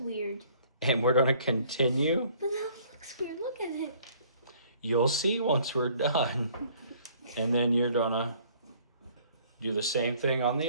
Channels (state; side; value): inverted; both; correlation -0.58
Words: weird. and we're going to continue. But that looks weird. Look at it. You'll see once we're done. And then you're going to do the same thing on